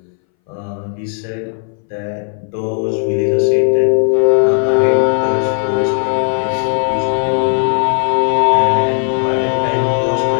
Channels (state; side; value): silent; right; 64 dB below the other